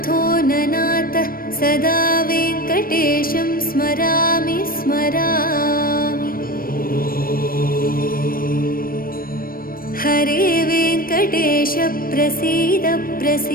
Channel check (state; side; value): late; right; 0.42 ms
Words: ननाथ सदा वेङ्कटेशं स्मरामि स्मरामि। हरे वेङ्कटेश प्रसीद